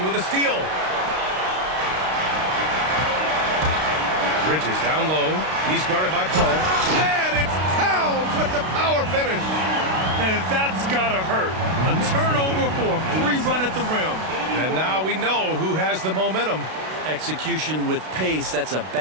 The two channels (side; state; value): left; late; 32 ms